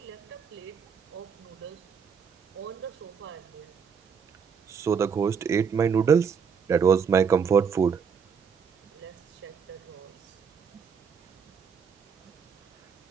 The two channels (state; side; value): quieter; left; 6.5 dB